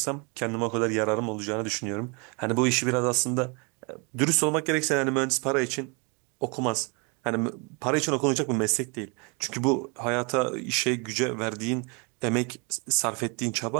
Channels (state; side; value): quieter; left; 32.4 dB